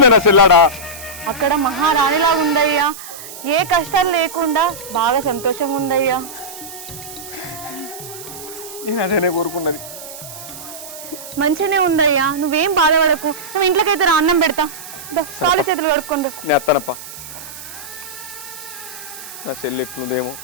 నా చెల్లాడా అక్కడ మహారాణిలాగా ఉందయ్యా. ఏ కష్టాలు లేకుండా బాగా సంతోషంగా ఉందయ్యా. నేను అదేనే కోరుకున్నది. మంచిగానే ఉందయ్యా, నువ్వేం బాధపడకు. నువ్వు ఇంట్లోకైతే రా, అన్నం పెడతా. కాలు చేతులు కడుక్కుంటూ. నేను అత్తానప్ప. నా చెల్లి ఎట్లుందేమో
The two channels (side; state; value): right; noise; hiss, 13 dB below the sound